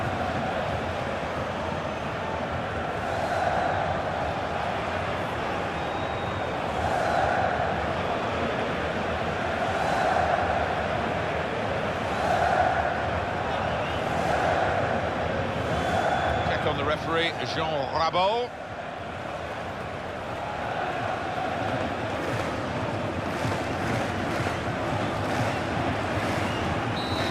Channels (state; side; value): identical; both; correlation 1.00